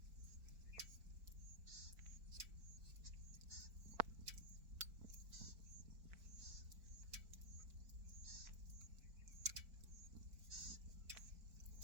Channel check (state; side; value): late; left; 4.5 ms